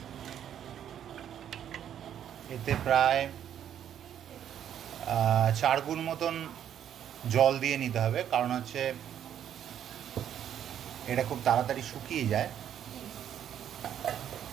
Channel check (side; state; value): left; quieter; 9.9 dB